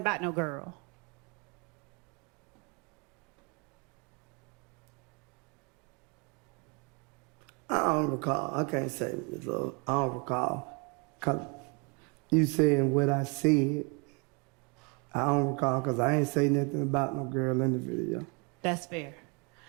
about no girl? I don't recall. I can't say, Ms. Love. I don't recall. Cause you saying what I said, I don't recall because I ain't say nothing about no girl in the video. That's fair.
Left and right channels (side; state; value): left; quieter; 32.5 dB